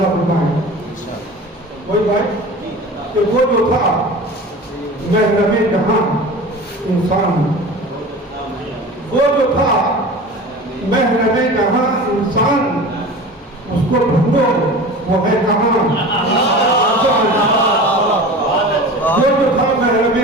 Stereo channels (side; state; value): both; normal; correlation 0.35